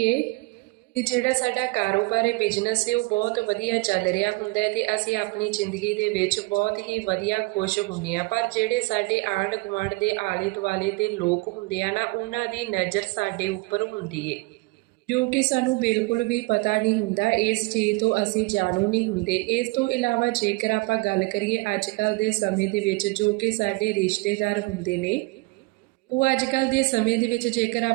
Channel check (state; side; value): quieter; left; 25.4 dB